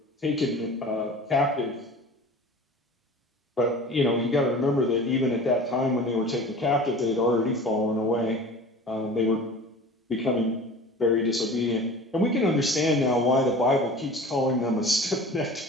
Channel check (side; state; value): both; normal; correlation 0.40